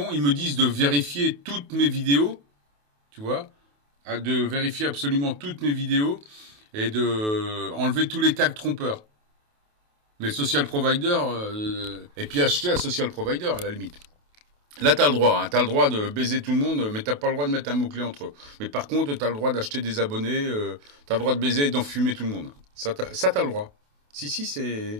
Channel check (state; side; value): late; left; 28 ms